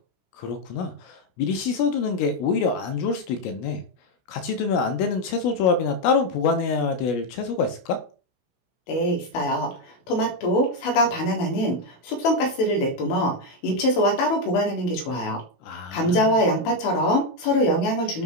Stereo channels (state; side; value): late; right; 16 ms